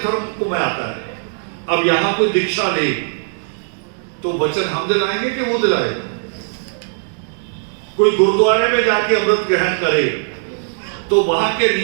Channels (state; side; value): silent; left; digital silence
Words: को मैं आता है। अब यहां कोई दीक्षा ले तो वचन हम दिलाएंगे कि वो दिलाएगा? कोई गुरुद्वारे में जाके अमृत ग्रहण करे तो वहां के